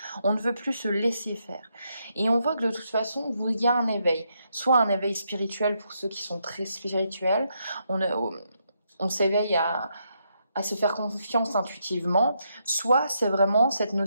On ne veut plus se laisser faire. Et on voit que de toute façon, il y a un éveil. Soit un éveil spirituel pour ceux qui sont très spirituels. On s'éveille à se faire confiance intuitivement. Soit c'est vraiment cette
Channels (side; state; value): both; inverted; correlation -0.78